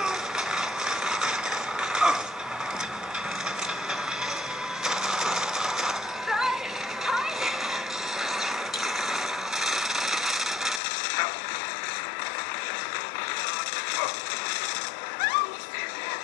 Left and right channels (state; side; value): drops out; right; at 10.8 s